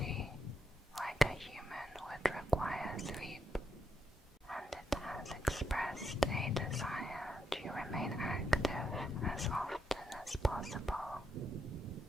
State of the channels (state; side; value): normal; both; correlation 0.81